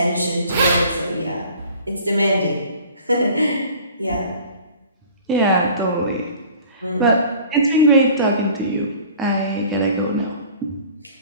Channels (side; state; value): both; inverted; correlation -0.47